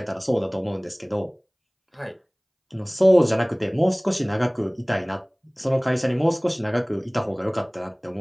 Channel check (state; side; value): identical; both; correlation 1.00